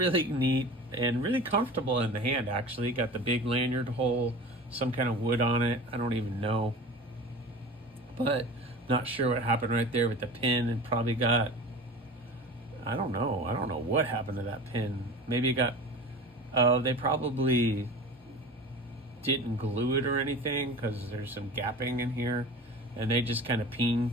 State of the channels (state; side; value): normal; both; correlation 0.35